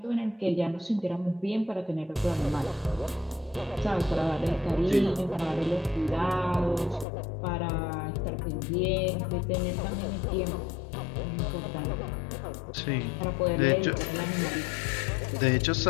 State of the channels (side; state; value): right; drops out; at 7.1 s